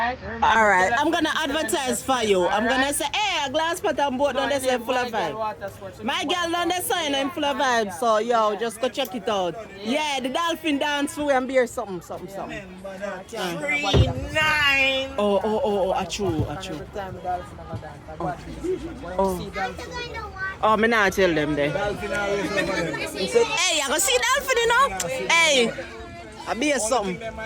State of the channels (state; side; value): identical; both; correlation 1.00